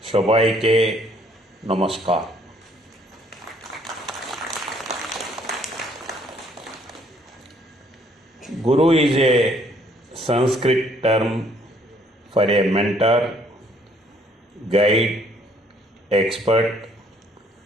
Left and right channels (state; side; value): normal; both; correlation 0.64